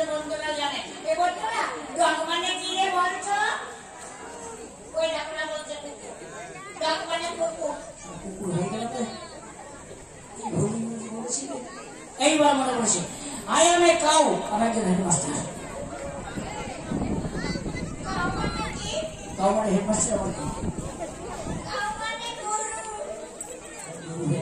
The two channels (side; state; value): both; identical; correlation 1.00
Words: বন্ধুরা জানে। এ বন্ধুরা ডগ মানে কি রে বলছো? ওই ডাকনা বলছে ডগ মানে কুকুর। কুকুর হয়ে গেল তো? এইবার মনে পড়ছে, আই এম এ কাউ, আমি একজন হেডমাস্টার। কাউ মানে হেডমাস্টার আমার কি?